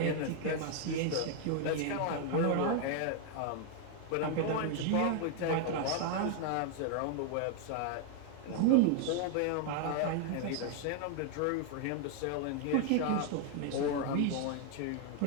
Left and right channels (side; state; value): both; different; correlation 0.00